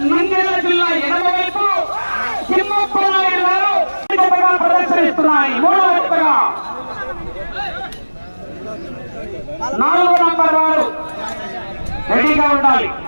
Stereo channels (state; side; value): inverted; both; correlation -1.00